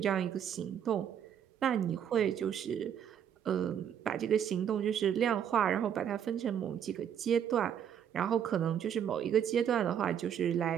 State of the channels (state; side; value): quieter; left; 8.9 dB